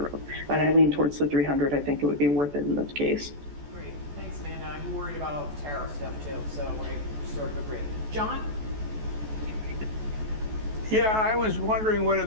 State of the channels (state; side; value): late; left; 14 ms